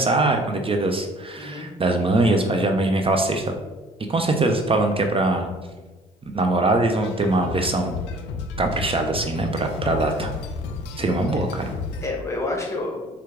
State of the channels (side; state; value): both; normal; correlation 0.52